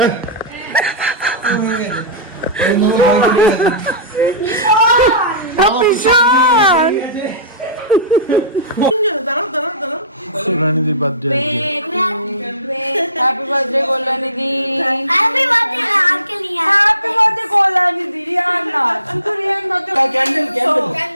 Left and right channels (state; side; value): inverted; both; correlation -0.35